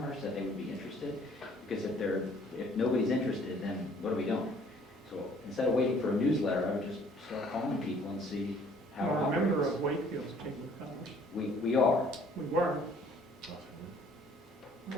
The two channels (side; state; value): both; normal; correlation 0.58